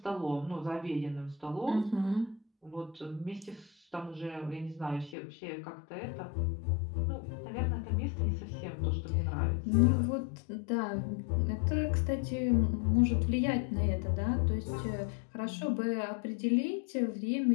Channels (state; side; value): drops out; right; at 5.2 s